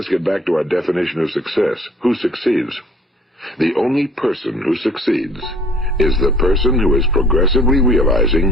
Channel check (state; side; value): normal; both; correlation 0.54